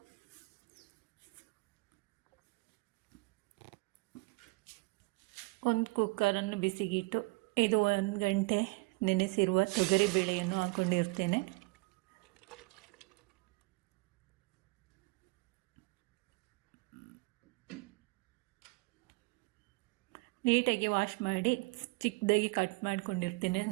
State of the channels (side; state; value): left; quieter; 26.2 dB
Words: ಒಂದು ಕುಕ್ಕರನ್ನು ಬಿಸಿಗಿಟ್ಟು ಇದು 1 ಗಂಟೆ ನೆನೆಸಿರುವ ತೊಗರಿ ಬೇಳೆಯನ್ನು ಹಾಕ್ಕೊಂಡಿರ್ತೇನೆ. ನೀಟಾಗಿ ವಾಶ್ ಮಾಡಿ ಚಿಕ್ಕದಾಗಿ ಕಟ್ ಮಾಡ್ಕೊಂಡಿರ್ತೇನೆ